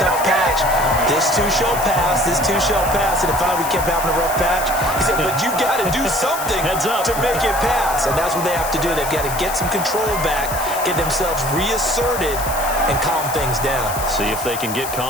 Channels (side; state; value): left; noise; hiss, 8 dB below the sound